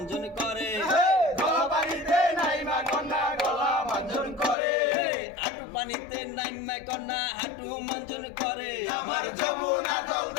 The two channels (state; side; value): drops out; right; at 4.5 s